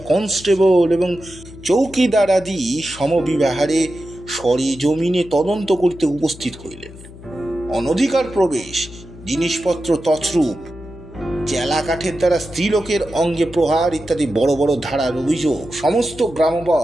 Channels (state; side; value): noise; left; hum, 18 dB below the sound